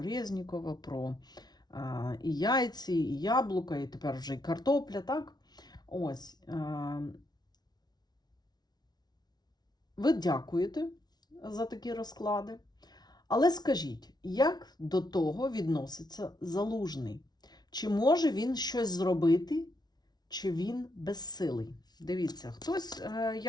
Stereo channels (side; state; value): right; late; 0.19 ms